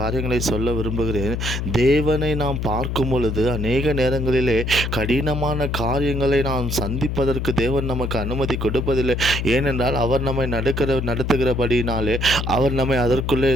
சொல்ல விரும்புகிறேன். தேவனை நாம் பார்க்கும் பொழுது அநேக நேரங்களிலே கடினமான காரியங்களை நாம் சந்திப்பதற்கு தேவன் நமக்கு அனுமதி கொடுப்பதில்லை. ஏனென்றால் அவர் நம்மை நடத்துகிறபடினாலே அவர் நம்மை அதற்குள்ளே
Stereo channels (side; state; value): left; noise; hum, 2 dB below the sound